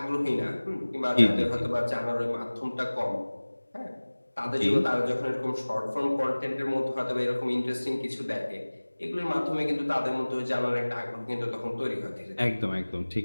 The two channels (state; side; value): inverted; both; correlation -1.00